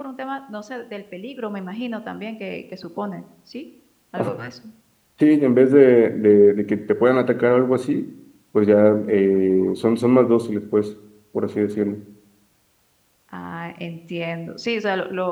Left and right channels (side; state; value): both; identical; correlation 1.00